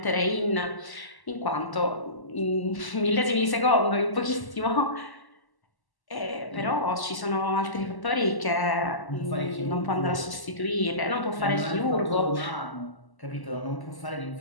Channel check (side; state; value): right; late; 1.1 ms